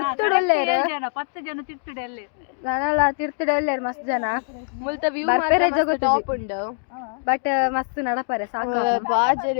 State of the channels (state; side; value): silent; right; digital silence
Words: 10 ಜನ ತಿರ್ತುಡಲ್ಲೆ ನಾನಲ್ಲ ತಿರ್ತುಡಲ್ಲೇರು ಮಸ್ತ್ ಜನ ಮುಲ್ತ ವ್ಯೂ ಬರ್ಪೆರೆ ಜಗತ್ತು ಟಾಪ್ ಉಂಡು ಬಟ್ ಮಸ್ತ್ ನಡಪರೆ ಸಾಕು